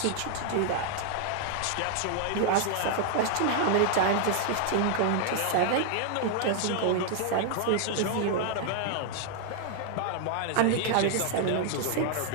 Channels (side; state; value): both; different; correlation 0.00